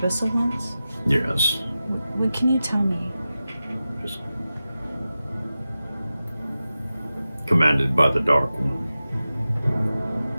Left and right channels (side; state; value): both; inverted; correlation -0.94